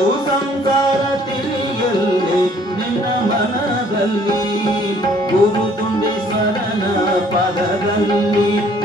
ಸಂಸಾರ ತಿಳಿಯಲ್ಲಿ ನಿನ್ನ ಮನದಲ್ಲಿ ಗುರು ತುಂಡೇಶ್ವರನ ಪಾದದಲ್ಲಿ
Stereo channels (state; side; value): normal; both; correlation 0.59